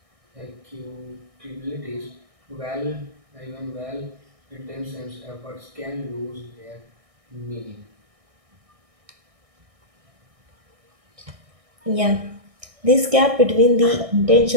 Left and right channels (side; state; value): left; late; 1.6 ms